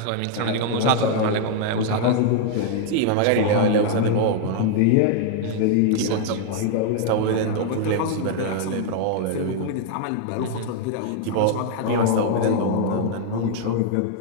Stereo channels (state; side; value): different; both; correlation 0.00